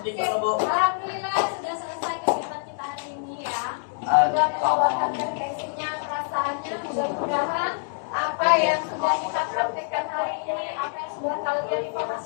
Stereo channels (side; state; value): right; silent; digital silence